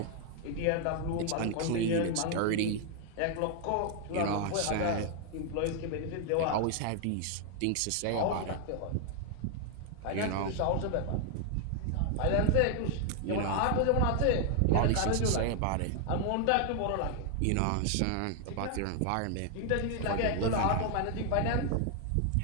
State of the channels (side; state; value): both; different; correlation 0.00